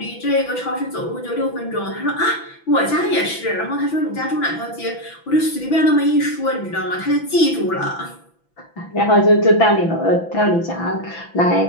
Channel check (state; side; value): late; right; 6.0 ms